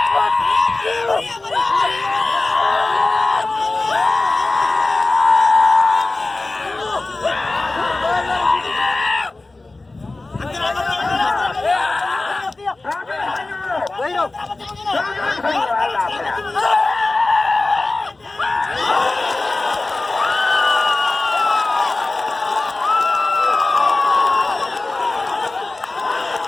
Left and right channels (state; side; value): quieter; right; 3.2 dB